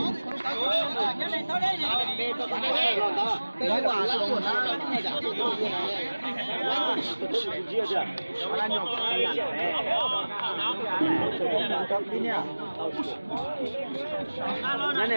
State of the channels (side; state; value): both; inverted; correlation -1.00